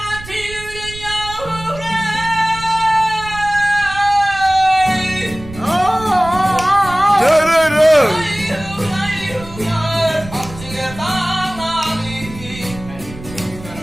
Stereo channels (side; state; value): right; noise; rumble, 15 dB below the sound